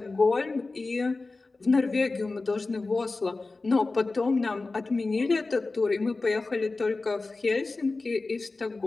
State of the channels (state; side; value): quieter; right; 3.5 dB